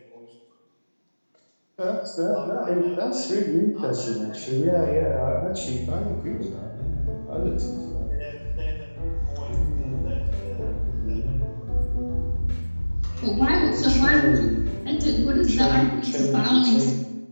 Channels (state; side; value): inverted; both; correlation -1.00